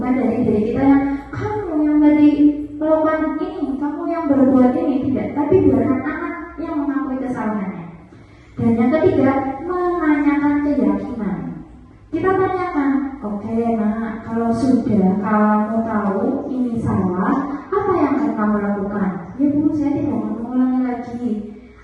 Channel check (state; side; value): identical; both; correlation 1.00